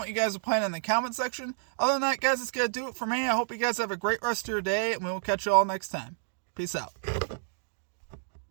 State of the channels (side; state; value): left; silent; digital silence